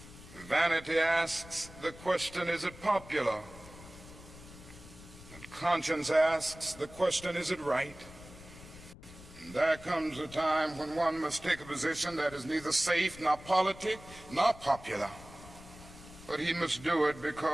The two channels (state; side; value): noise; left; rumble, 18 dB below the sound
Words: Vanity asks the question, is it popular? And conscience asks the question, is it right? And there comes a time when one must take a position that is neither safe, nor politic, nor popular. But he must do it